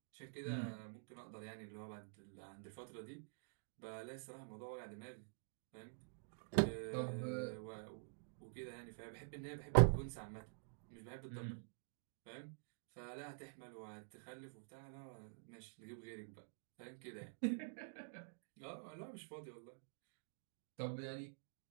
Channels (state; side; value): silent; left; digital silence